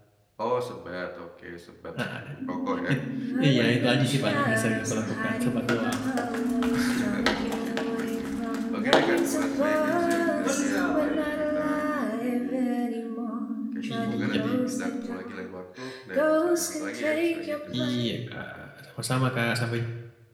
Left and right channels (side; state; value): both; identical; correlation 1.00